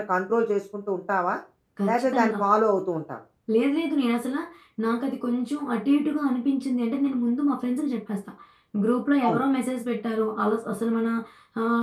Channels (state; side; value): identical; both; correlation 1.00